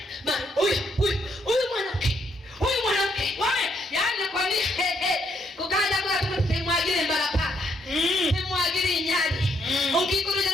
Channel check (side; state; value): both; normal; correlation 0.73